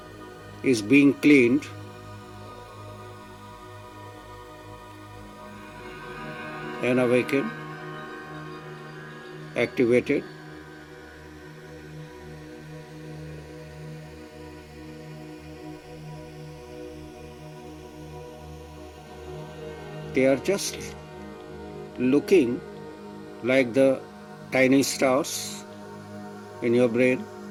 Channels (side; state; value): both; identical; correlation 1.00